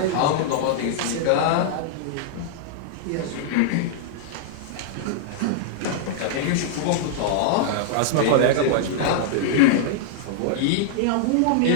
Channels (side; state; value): both; different; correlation -0.02